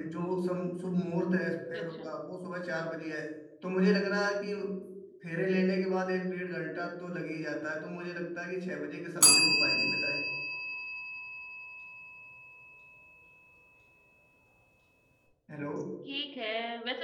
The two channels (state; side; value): identical; both; correlation 1.00